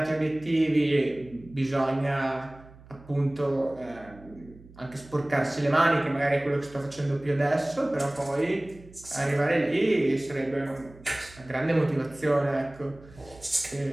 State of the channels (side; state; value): right; noise; hum, 22 dB below the sound